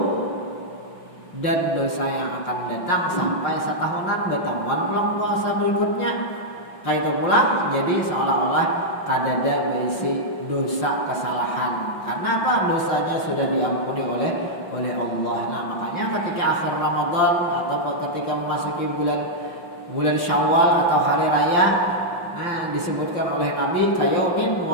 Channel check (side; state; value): right; late; 5.7 ms